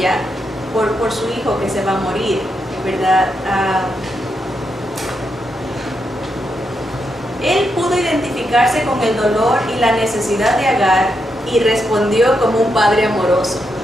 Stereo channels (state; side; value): normal; both; correlation 0.82